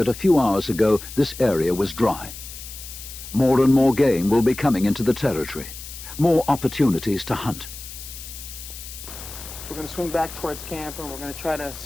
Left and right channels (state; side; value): noise; left; hiss, 12 dB below the sound